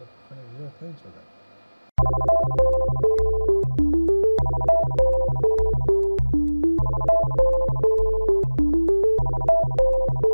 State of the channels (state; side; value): inverted; both; correlation -1.00